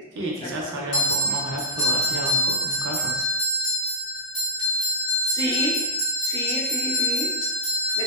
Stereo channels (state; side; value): normal; both; correlation -0.13